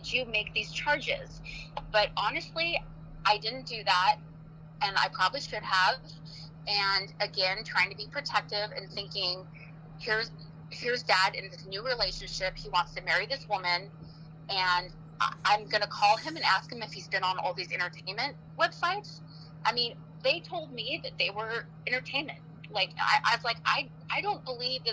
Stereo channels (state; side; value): identical; both; correlation 1.00